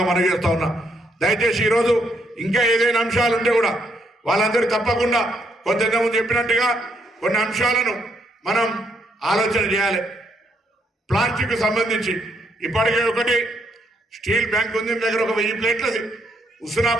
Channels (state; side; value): normal; both; correlation 0.74